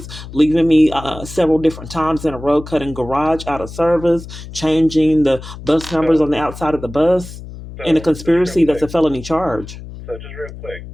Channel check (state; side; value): noise; left; hum, 13 dB below the sound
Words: leaving me several different times in a row, cutting garage out of service, changing the bus numbers on the outside of the bus, and a conspiracy that's a felony charge. So just real quick,